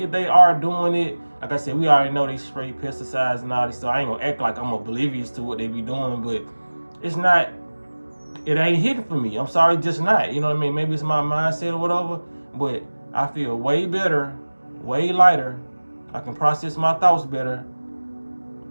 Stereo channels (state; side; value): inverted; both; correlation -1.00